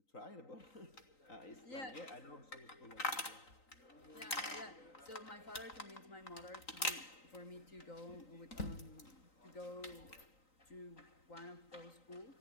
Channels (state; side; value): late; right; 3.9 ms